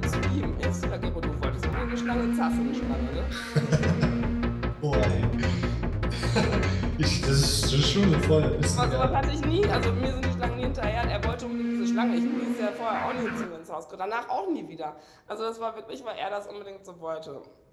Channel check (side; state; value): both; identical; correlation 1.00